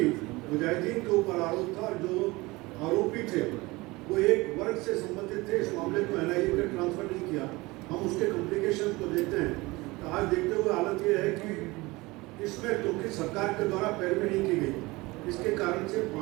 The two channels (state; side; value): quieter; left; 22.2 dB